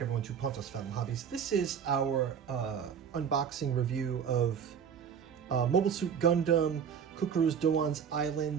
everyone, to Pontos Family Hobbies. This is our unboxing review of Mobile Suit Gundam, Cucuruz Doan's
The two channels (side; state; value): left; quieter; 7.5 dB